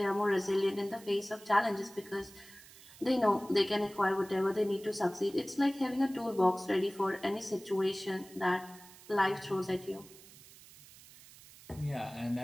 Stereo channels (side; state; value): right; noise; hiss, 21 dB below the sound